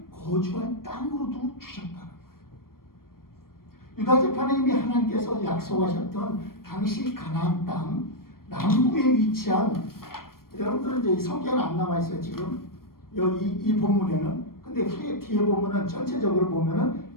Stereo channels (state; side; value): late; right; 0.93 ms